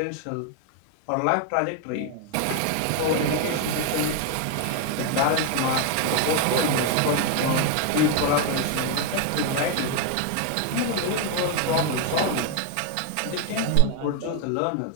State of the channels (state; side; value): different; both; correlation 0.01